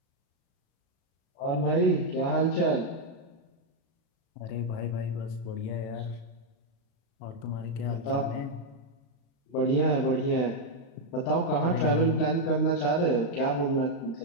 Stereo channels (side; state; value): right; late; 36 ms